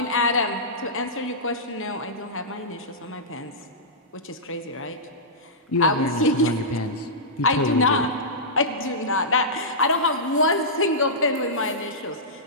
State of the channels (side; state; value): both; normal; correlation -0.15